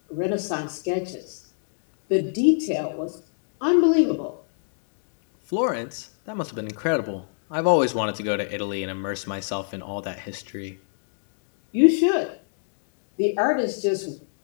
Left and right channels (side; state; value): right; silent; digital silence